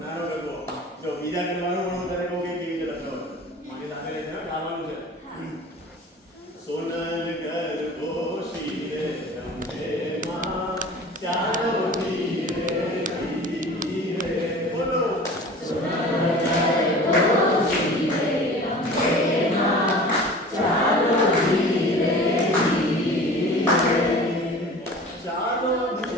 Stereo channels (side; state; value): both; normal; correlation 0.41